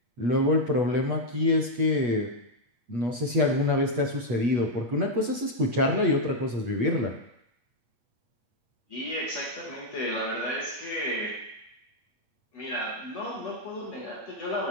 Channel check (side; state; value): left; late; 8.3 ms